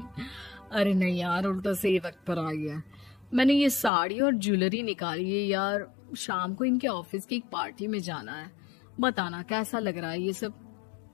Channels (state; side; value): drops out; right; at 3.9 s